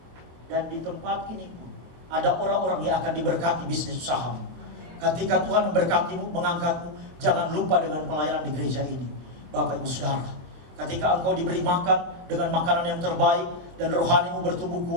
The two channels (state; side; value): late; left; 24 ms